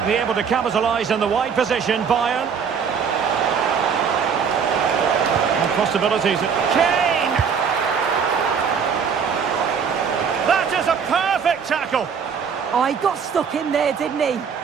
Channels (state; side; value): quieter; left; 6.6 dB